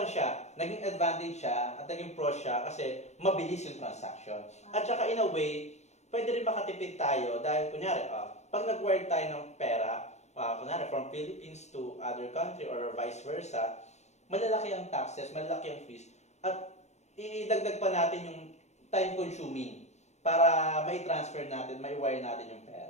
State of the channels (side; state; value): right; late; 0.33 ms